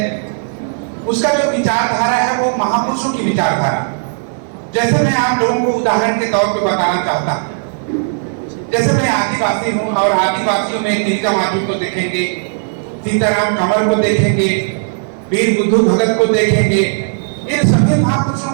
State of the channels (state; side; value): silent; left; 69 dB below the other